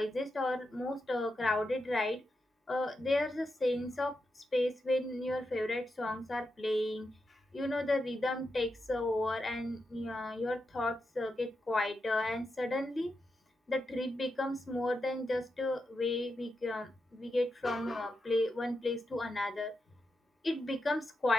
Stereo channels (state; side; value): normal; both; correlation 0.87